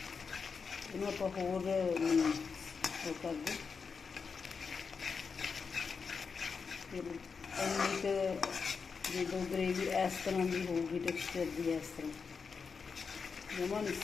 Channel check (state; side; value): quieter; right; 5.4 dB